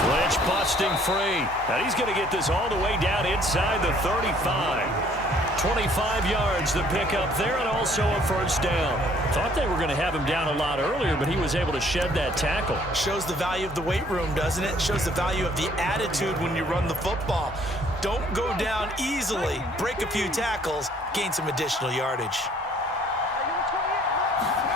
Lynch busting free. And he's going to get this all the way down inside the 35. 25 yards the pickup there, and also a 1st down. Thought they were going to have him down a lot earlier, but he was able to shed that tackle. Shows the value of the weight room, doesn't it? Shows the value of the attitude when you run the football. Don't go down easily. Break a few tackles. Gain some additional yardage.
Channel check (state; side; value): normal; both; correlation 0.60